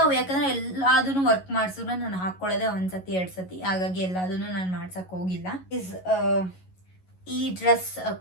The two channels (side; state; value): right; late; 11 ms